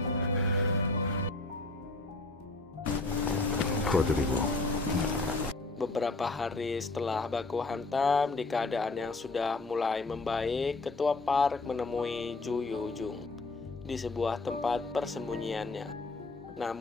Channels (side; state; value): right; quieter; 3.2 dB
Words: Beberapa hari setelah baku hantam, di keadaan yang sudah mulai membaik, Ketua Park menemui Ju Yo-jung di sebuah tempat persembunyiannya.